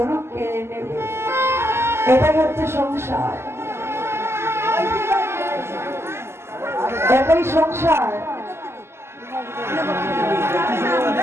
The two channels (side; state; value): left; late; 0.12 ms